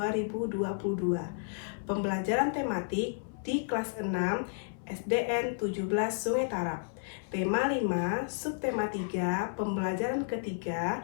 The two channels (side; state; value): right; silent; 56 dB below the other